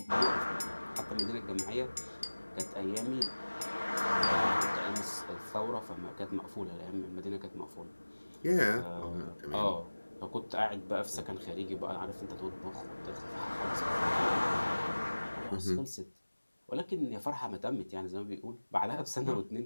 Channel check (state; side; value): inverted; both; correlation -1.00